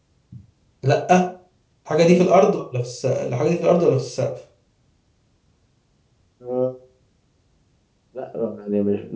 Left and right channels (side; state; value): both; identical; correlation 1.00